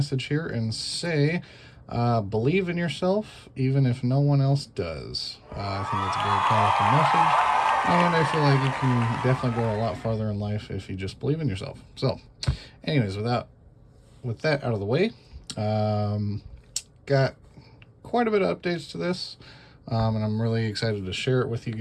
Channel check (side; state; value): both; identical; correlation 1.00